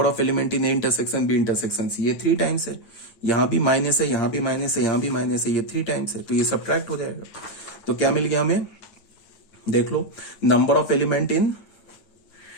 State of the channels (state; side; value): late; right; 9.2 ms